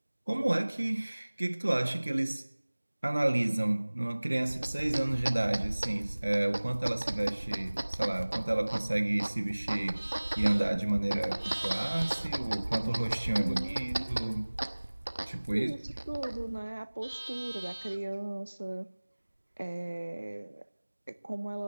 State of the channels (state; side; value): inverted; both; correlation -1.00